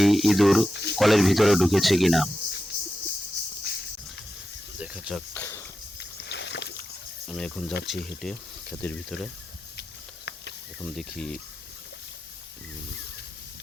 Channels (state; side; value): normal; both; correlation 0.90